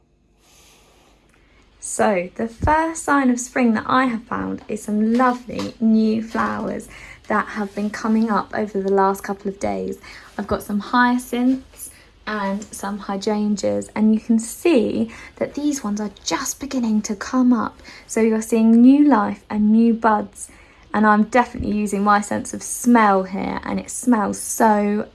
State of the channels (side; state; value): both; identical; correlation 1.00